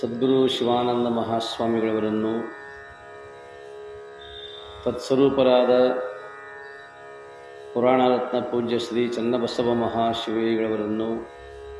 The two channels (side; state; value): both; identical; correlation 1.00